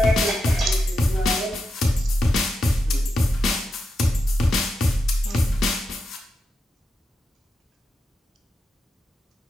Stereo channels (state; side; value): normal; both; correlation 0.87